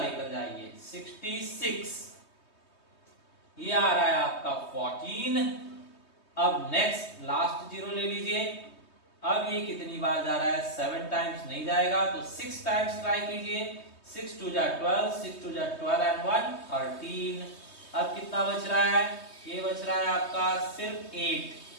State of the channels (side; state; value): right; late; 3.2 ms